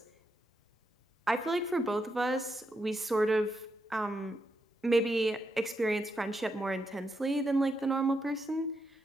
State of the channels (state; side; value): normal; both; correlation 0.83